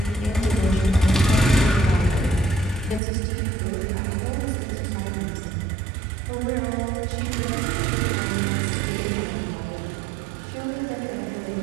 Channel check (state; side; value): drops out; left; at 3.0 s